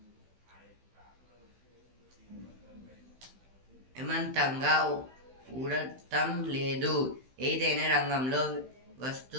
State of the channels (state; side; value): late; left; 16 ms